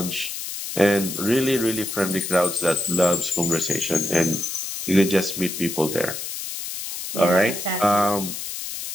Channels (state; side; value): noise; left; hiss, 6 dB below the sound